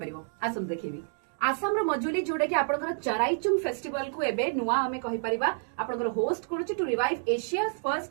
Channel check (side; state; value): left; silent; digital silence